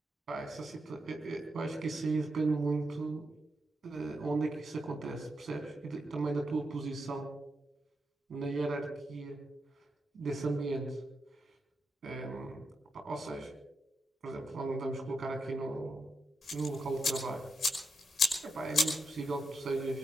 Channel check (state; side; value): normal; both; correlation 0.85